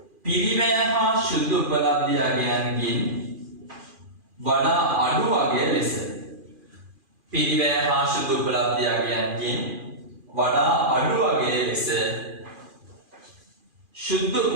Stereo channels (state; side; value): late; left; 2.4 ms